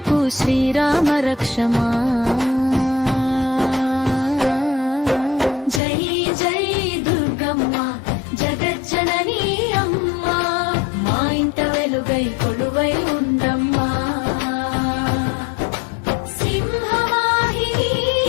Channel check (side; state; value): right; drops out; at 5.8 s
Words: శ్రీరామ రక్షమా. జై జై దుర్గమ్మ జగజ్జననీ అమ్మా, మా ఇంట వెలుగై కొలువై ఉండమ్మా. సింహవాహిని